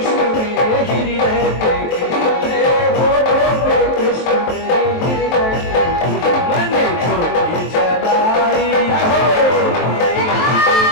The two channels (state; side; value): late; right; 23 ms